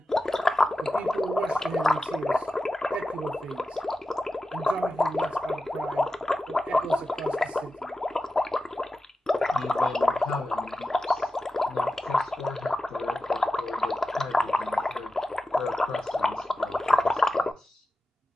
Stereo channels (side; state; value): both; normal; correlation 0.92